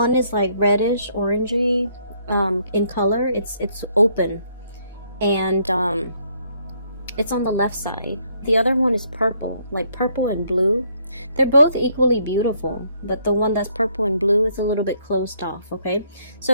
is like reddish, orangey in color. It's open, and it's on the left side. The other one is purple, like purple and blue. They're both equally beautiful, but the one that's purple and blue is a little bit closed off, okay?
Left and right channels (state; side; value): inverted; both; correlation -0.69